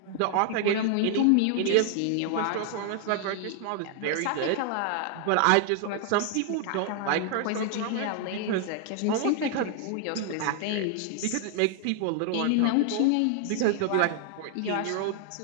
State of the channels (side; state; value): both; different; correlation 0.00